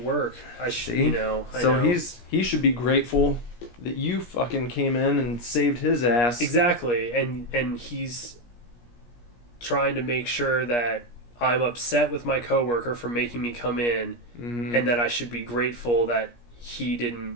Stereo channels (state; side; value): late; right; 17 ms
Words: work. See? I so know. he should be grateful that you fucking came in and saved his ass. Exactly, and he's trying to make sure that I'm upset with my coworker for making me come in, Mm-hmm. and that I should be grateful that he didn't